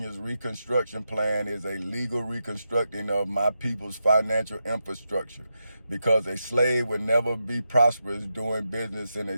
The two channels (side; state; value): both; inverted; correlation -0.87